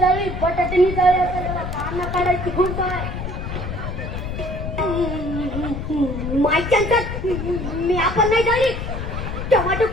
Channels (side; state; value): left; noise; rumble, 5 dB below the sound